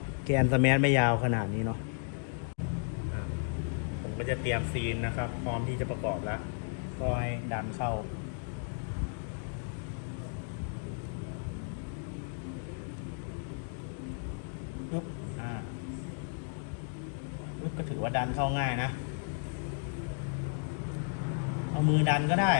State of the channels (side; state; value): right; silent; 55 dB below the other